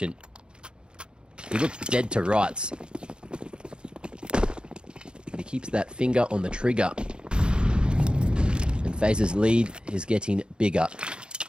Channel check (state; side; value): late; left; 0.051 ms